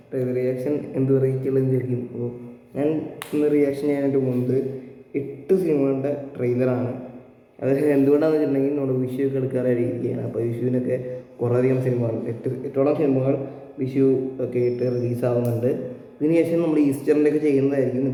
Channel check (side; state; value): both; identical; correlation 1.00